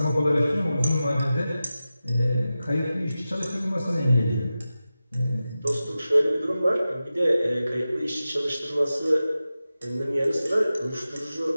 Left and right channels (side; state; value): both; inverted; correlation -0.94